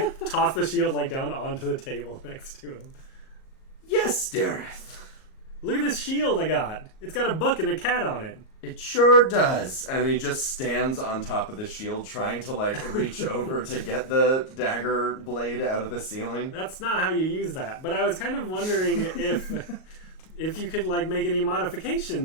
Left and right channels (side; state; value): right; late; 38 ms